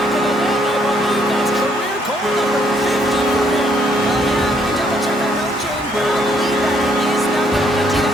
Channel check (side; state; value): both; normal; correlation 0.69